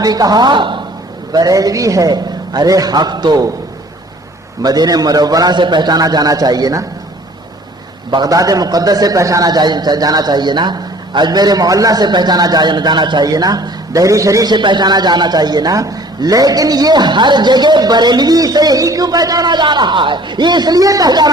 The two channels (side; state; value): both; normal; correlation 0.51